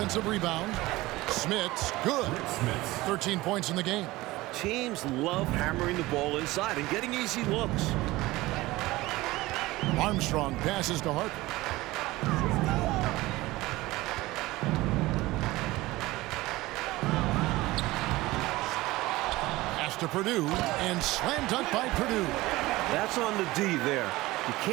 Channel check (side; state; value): left; quieter; 19.2 dB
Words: rebound. Smith's good. 13 points in the game. Teams love hammering the ball inside and getting easy looks. Armstrong passes to Harper. Pass to Purdue and slam dunk by Purdue. That's on the D there. You